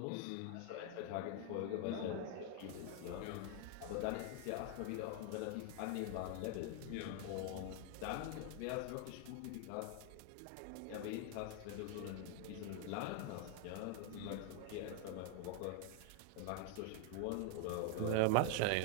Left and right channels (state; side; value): different; both; correlation 0.00